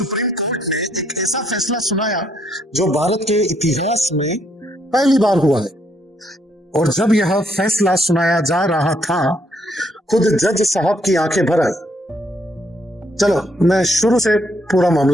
कोर्ट ने एक ऐसा फैसला सुनाया जो भारत के इतिहास में पहली बार हुआ है। और जब यह फैसला सुनाया जा रहा था खुद जज साहब की आंखें भर आई। चलो मैं शुरू से पूरा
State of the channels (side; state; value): both; normal; correlation 0.71